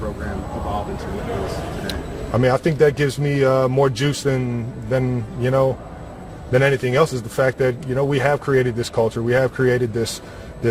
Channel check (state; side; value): identical; both; correlation 1.00